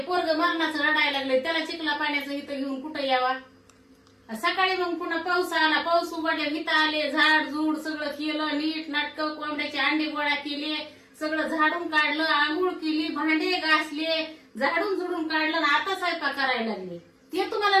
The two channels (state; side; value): identical; both; correlation 1.00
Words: पोरग मरणाचं रडायला लागले, त्याला चिखला पाण्याचं इथं घेऊन कुठं यावा. सकाळी मग पुन्हा पाऊस आला, पाऊस उघडल्या इथं आले, झाड झूड सगळं केलं, नीट नाटक, कोंबड्याचे अंडे गोळा केले, सगळं झाडून काढलं, आंघोळ केली, भांडे घासले, झाडून झुडून काढलं, आता स्वयंपाक करायला लागले. ते तुम्हाला